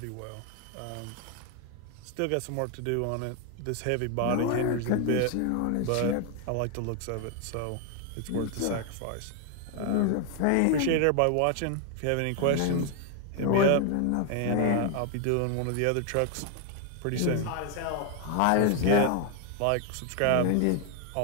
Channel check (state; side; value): different; both; correlation 0.00